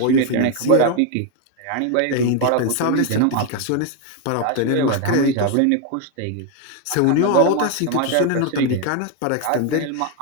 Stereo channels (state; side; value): different; both; correlation 0.01